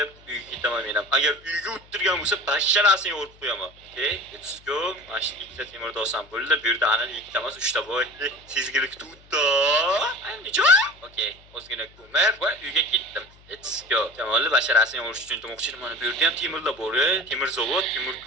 uyga ketaman men ham. Agar uyga o'tirgan bo'lsa, basharasini yorib qo'yaman. Okay, let's go. Mana shu ikkita temirni olsam bo'ldi. Bu yerda ana ikkita emas, 3 ta bor. Sezgilik tutdi. Andijo? Okay, o'zgina ko'mir va uyga ketdim. Let's go. Jamolni basharasini yorish uchun demoqchiman. Mana bu yerda ham temirlar bor. Temir zavod, temir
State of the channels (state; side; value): noise; left; hum, 26 dB below the sound